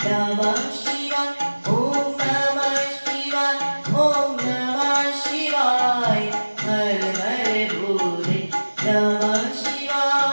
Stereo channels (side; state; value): both; inverted; correlation -1.00